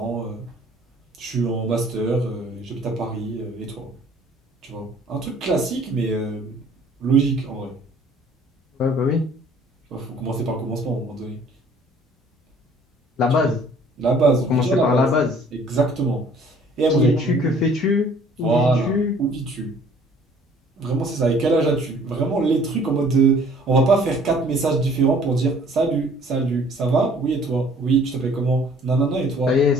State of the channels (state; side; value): normal; both; correlation 0.55